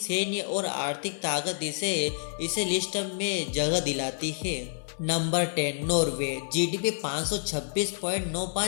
और आर्थिक ताकत इसे लिस्ट में जगह दिलाती है। नंबर 10 नॉर्वे, जीडीपी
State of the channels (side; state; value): right; silent; 59 dB below the other